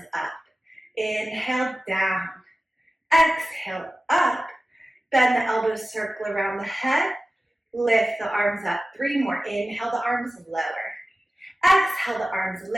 up. Inhale, down. Exhale, up. Bend the elbows, circle around the head. Lift the arms up. 3 more. Inhale, the arms lower. Exhale, the arms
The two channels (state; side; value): normal; both; correlation 0.95